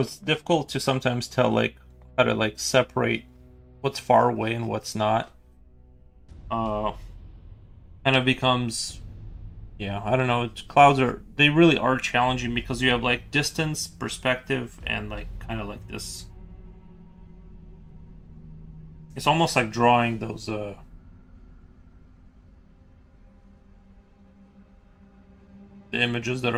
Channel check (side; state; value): both; identical; correlation 1.00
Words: it's difficult to sometimes tell like how to like separate what's far away and what's not. Uh, kind of becomes, yeah, I don't know. Clouds are, they really are challenging because you have like distance, perspective, and like kind of like this. It's almost like drawing those the images that